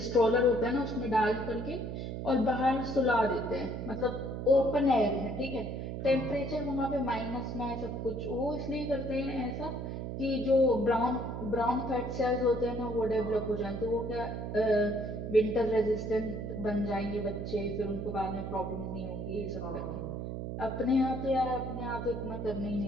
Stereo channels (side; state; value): right; noise; hum, 5 dB below the sound